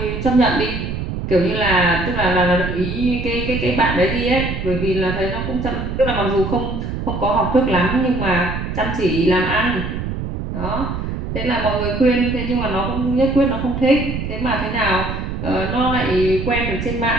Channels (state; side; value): noise; right; rumble, 4 dB below the sound